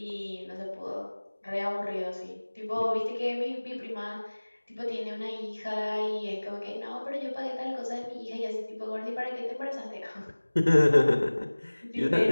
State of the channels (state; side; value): inverted; both; correlation -1.00